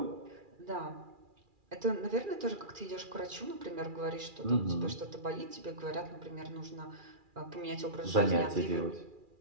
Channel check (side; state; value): left; late; 2.4 ms